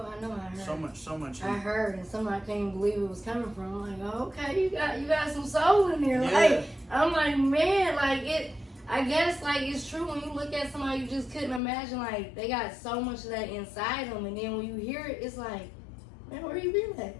I know, I heard. So much heat. I heard, and somebody couldn't even believe it was coming from. I'm like, oh, okay, you got some soul in there. Yeah. Like, I'm like, man, like it. I guess like it's true when you look at somebody, you just couldn't imagine like they got so much of that inside them, and then when you hear it, it's like, man, where you been at?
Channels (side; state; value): right; drops out; at 11.6 s